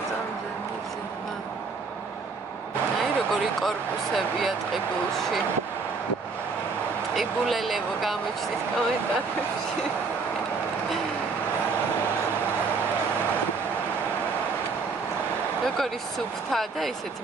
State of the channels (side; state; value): left; quieter; 4.6 dB